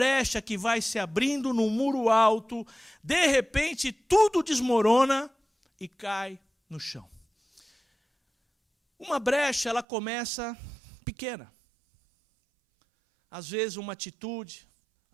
que vai se abrindo num muro alto, de repente tudo desmorona e cai no chão. Uma brecha, ela começa pequena. Às vezes uma atitude,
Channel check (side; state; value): left; drops out; at 9.9 s